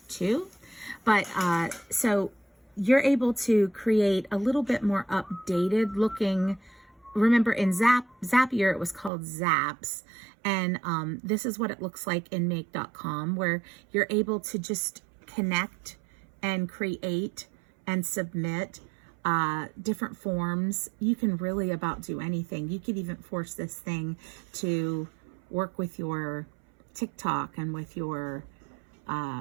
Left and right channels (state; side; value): drops out; left; at 9.1 s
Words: 2. But so you're able to create a little bit more updated looking. Remember, in Zapier, it was called Zaps. And this is what it looks like in Make.com, where you're able to just connect and create and submit different forms. You can really about do anything. You could even force this thing to work with your TikTok and with your